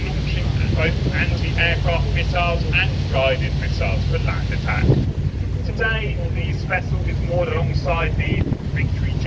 both anti-aircraft missiles and guided missiles for land attack. Today, this vessel is moored alongside the Victory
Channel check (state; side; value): identical; both; correlation 1.00